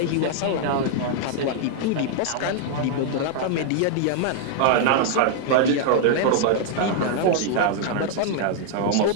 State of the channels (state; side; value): different; both; correlation 0.00